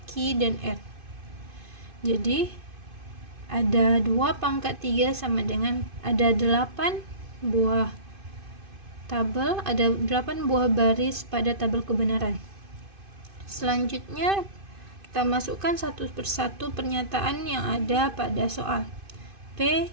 Q, dan R. Jadi ada 2 pangkat 3 sama dengan ada 8 buah tabel, ada 8 buah baris pada tabel kebenaran. Selanjutnya kita masukkan satu persatu pernyataan yang ada pada soal. P,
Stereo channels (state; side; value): late; left; 2.5 ms